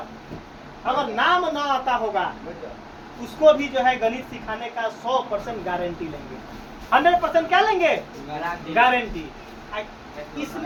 अगर नाम ना आता होगा उसको भी जो है गणित सिखाने का 100% गारंटी लेंगे। 100% क्या लेंगे? गारंटी।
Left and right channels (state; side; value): identical; both; correlation 1.00